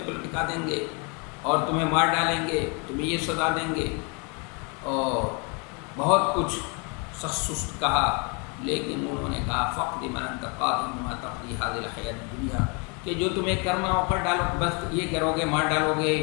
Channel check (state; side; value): quieter; right; 33.3 dB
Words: پر لٹکا دیں گے اور تمہیں مار ڈالیں گے، تمہیں یہ سزا دیں گے، اور بہت کچھ سخت سست کہا۔ لیکن انہوں نے کہا فقد من انت قاض بما تقضي هذه الحیات الدنیا، کہ جو تمہیں کرنا ہو کر ڈالو، بس یہ کرو گے، مار ڈالو گے،